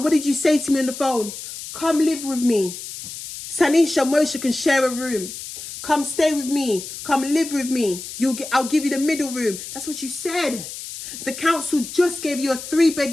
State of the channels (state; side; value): noise; left; hiss, 10 dB below the sound